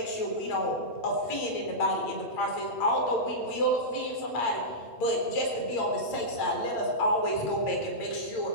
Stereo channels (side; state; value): right; late; 8.8 ms